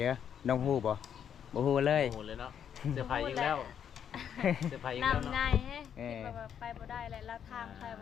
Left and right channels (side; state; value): right; quieter; 8.6 dB